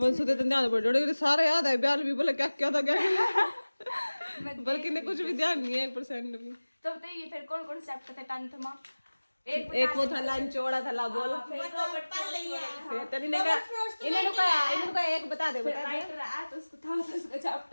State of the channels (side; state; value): both; inverted; correlation -1.00